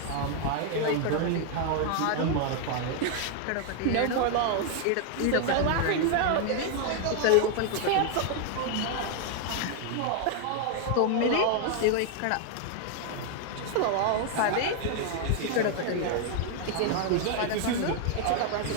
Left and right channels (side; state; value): both; different; correlation 0.00